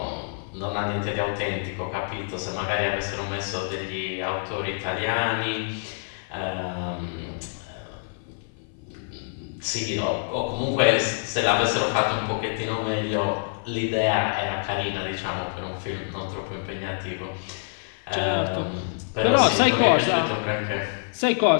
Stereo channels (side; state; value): right; silent; 55 dB below the other